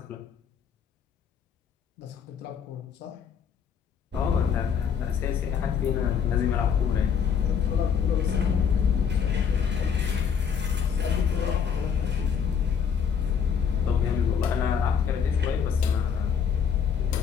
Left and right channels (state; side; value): quieter; right; 7.2 dB